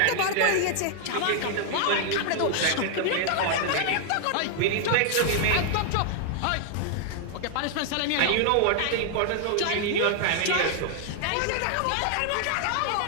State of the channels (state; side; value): different; both; correlation 0.00